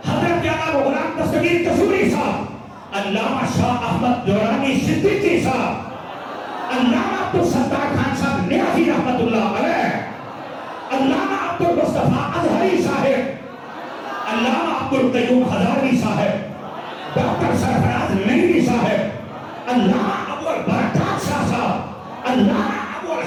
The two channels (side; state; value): both; identical; correlation 1.00